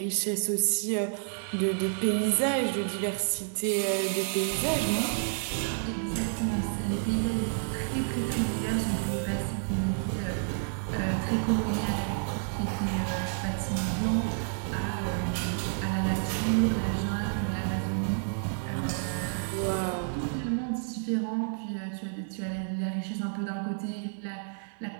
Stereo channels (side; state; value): left; silent; 58 dB below the other